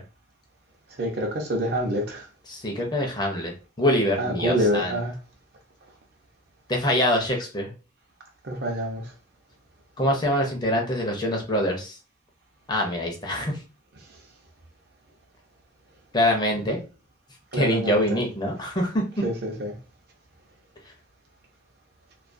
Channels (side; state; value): both; normal; correlation 0.31